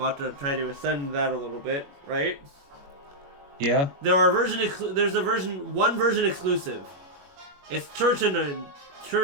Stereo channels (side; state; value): left; late; 21 ms